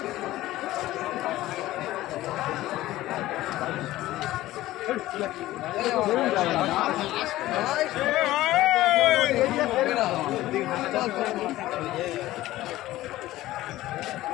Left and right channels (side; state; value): right; quieter; 16.1 dB